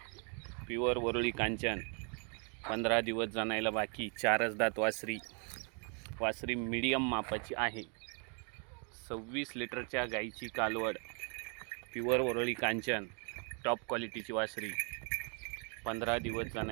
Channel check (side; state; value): left; quieter; 38.3 dB